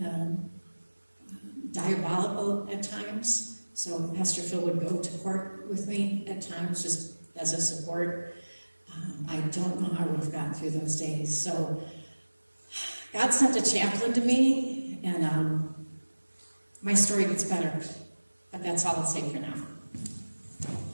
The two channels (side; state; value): both; inverted; correlation -1.00